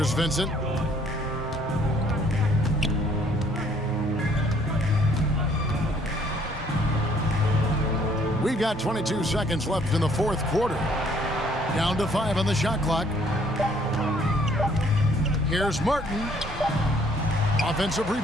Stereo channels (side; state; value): both; normal; correlation 0.62